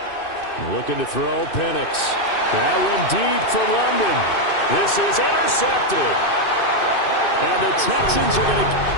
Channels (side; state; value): right; late; 2.6 ms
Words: Looking to throw, Penix. That one deep for London. This is intercepted. And the Texans are going